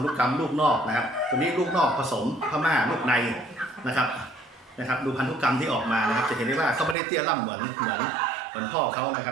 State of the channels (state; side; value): drops out; left; at 7.0 s